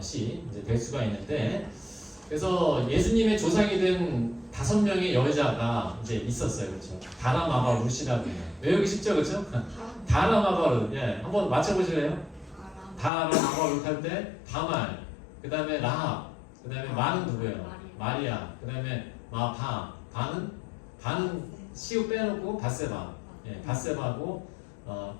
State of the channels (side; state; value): right; drops out; at 13.1 s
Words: 이제 될 수가 있는데, 그래서 예수님의 조상이 된 5명의 여자가 이제 있었어요, 그렇죠? 다라마바 룻이라고 해요. 외우기 쉽죠, 그렇죠? 다라마바 룻, 한번 맞춰보실래요? 다라마바 룻 할 때 다말, 그 다음에 라합, 그 다음에 마는 누구예요? 마리아, 그 다음에 바는 시우 빼놓고 바세바, 바세바고